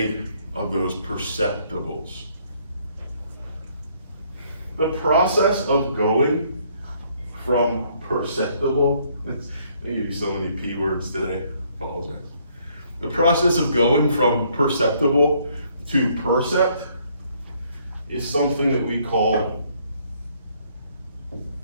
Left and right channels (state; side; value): inverted; both; correlation -0.66